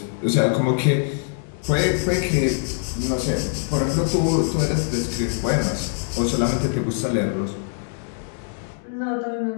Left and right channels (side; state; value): right; silent; digital silence